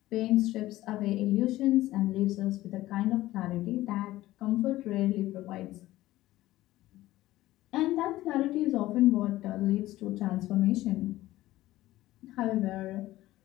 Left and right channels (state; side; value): quieter; right; 16.2 dB